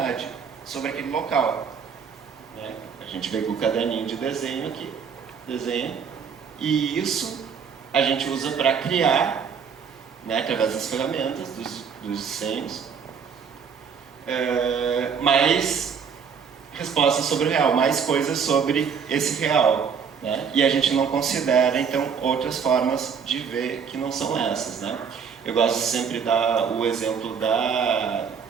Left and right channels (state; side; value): quieter; left; 6.6 dB